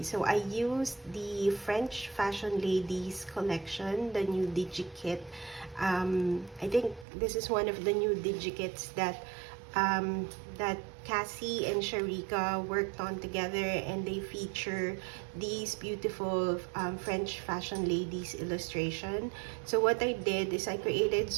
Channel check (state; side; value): drops out; left; at 7.1 s